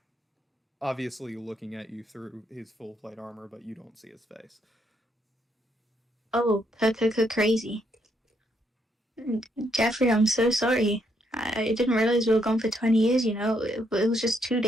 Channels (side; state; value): both; normal; correlation 0.74